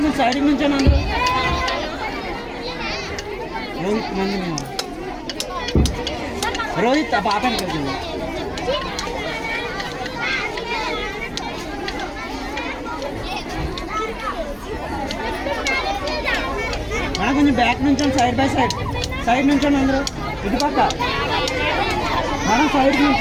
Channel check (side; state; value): both; identical; correlation 1.00